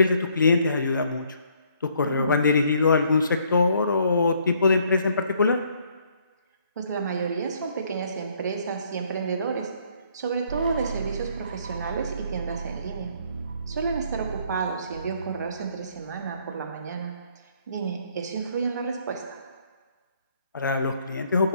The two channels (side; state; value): both; inverted; correlation -0.66